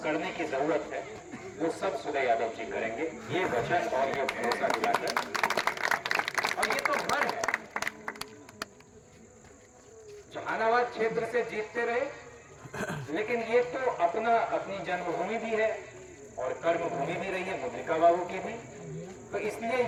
करने की जरूरत है वो सब सुदय यादव जी करेंगे, ये वचन और ये भरोसा दिलाकर। और ये तो घर है, जहानाबाद क्षेत्र से जीतते रहे, लेकिन ये तो अपनी जन्मभूमि भी है और कर्मभूमि भी रही है मुद्रिका बाबू की भी। तो इसलिए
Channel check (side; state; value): both; identical; correlation 1.00